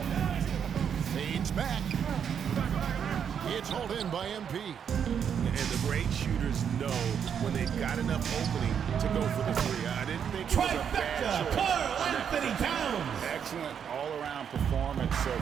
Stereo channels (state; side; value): quieter; left; 7.9 dB